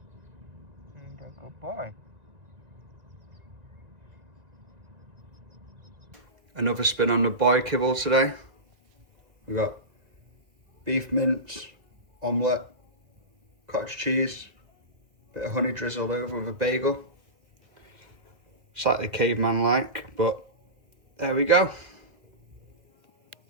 Ain't that good boy? Another spin on the boy kibble today. We've got beef mince, omelette, cottage cheese, bit of honey drizzled over with a bagel. Slightly caveman-like, but there we go.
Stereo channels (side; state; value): left; late; 1.9 ms